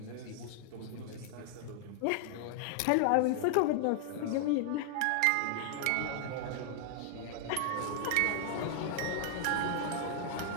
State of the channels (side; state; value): both; different; correlation 0.00